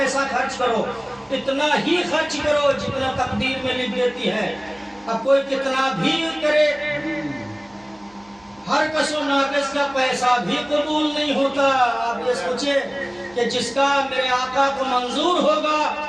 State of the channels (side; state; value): right; noise; hum, 30 dB below the sound